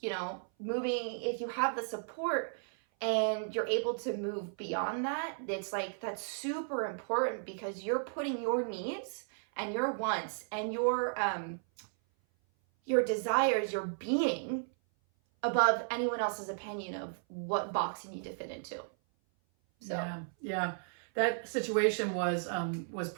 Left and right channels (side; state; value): left; silent; 55 dB below the other